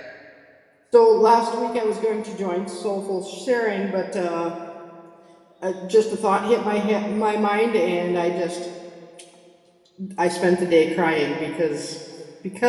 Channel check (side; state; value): both; identical; correlation 1.00